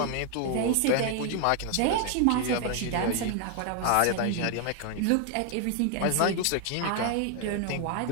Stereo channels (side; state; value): both; different; correlation 0.00